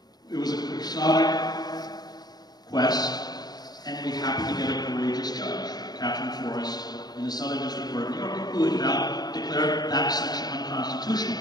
it was a quixotic quest, and we happened to get a courageous judge, Catherine Forrest, in the Southern District Court of New York, who had declared that section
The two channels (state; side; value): late; right; 0.19 ms